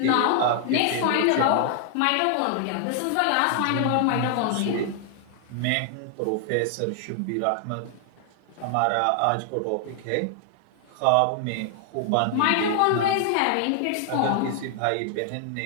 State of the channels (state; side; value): different; both; correlation 0.00